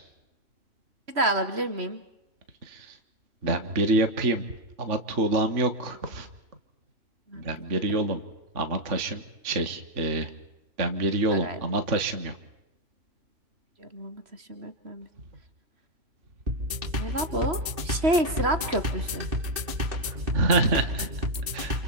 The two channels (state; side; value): late; left; 3.1 ms